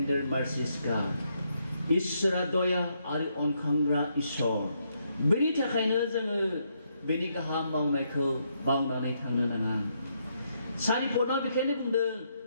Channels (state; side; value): inverted; both; correlation -0.77